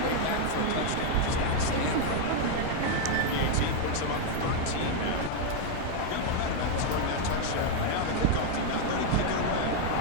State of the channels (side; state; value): both; different; correlation 0.00